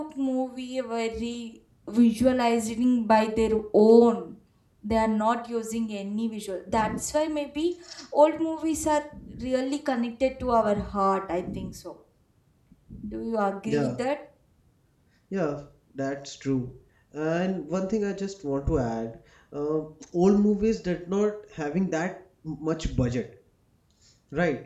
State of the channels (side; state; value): both; identical; correlation 1.00